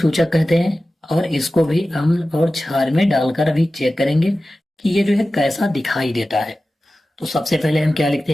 कहते हैं। और इसको भी अम्ल और क्षार में डालकर अभी चेक करेंगे कि ये जो है कैसा दिखाई देता है। तो सबसे पहले हम क्या लिखते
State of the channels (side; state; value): both; normal; correlation 0.95